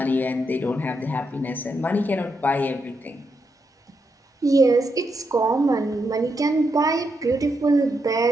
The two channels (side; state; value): both; normal; correlation 0.82